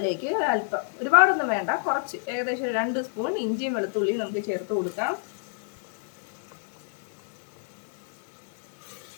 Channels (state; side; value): silent; right; 59 dB below the other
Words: അല്പം, ഒരുപാടൊന്നും വേണ്ട, കുറച്ച് ഏകദേശം 2 സ്പൂൺ ഇഞ്ചിയും വെളുത്തുള്ളിയും നമുക്ക് ചേർത്ത് കൊടുക്കാം.